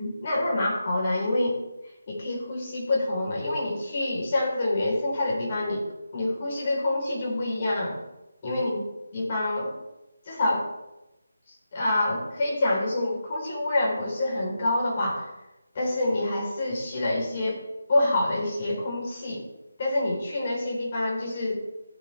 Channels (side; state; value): both; inverted; correlation -0.88